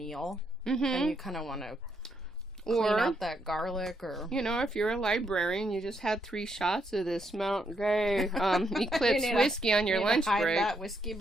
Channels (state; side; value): normal; both; correlation 0.77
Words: and you kind of want to clean out that garlic, or you know, if you're a librarian, you just had 3 shots of this Mount Gray Eclipse whiskey on your lunch break. That whiskey